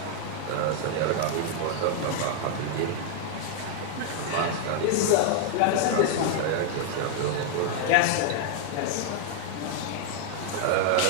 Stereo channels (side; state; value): both; different; correlation 0.00